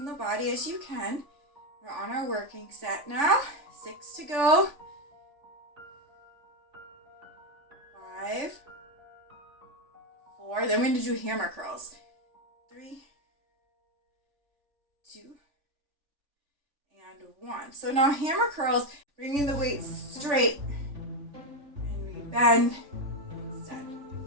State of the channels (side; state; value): left; late; 3.5 ms